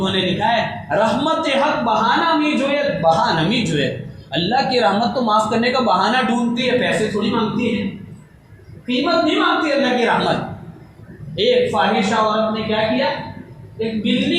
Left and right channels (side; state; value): both; identical; correlation 1.00